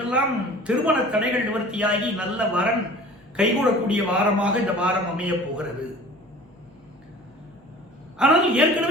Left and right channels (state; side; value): normal; both; correlation 0.44